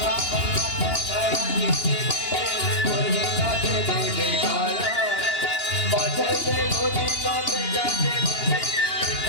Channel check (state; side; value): late; right; 2.9 ms